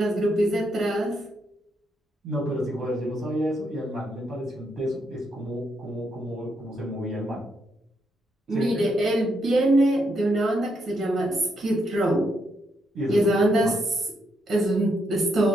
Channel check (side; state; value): both; normal; correlation 0.78